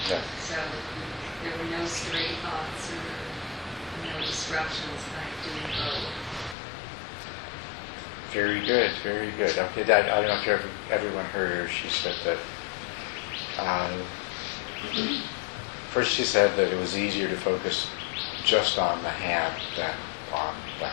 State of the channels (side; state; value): right; drops out; at 6.6 s